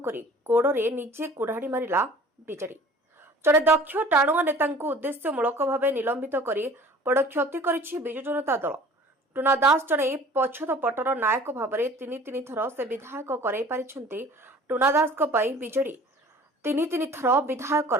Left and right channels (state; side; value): normal; both; correlation 0.47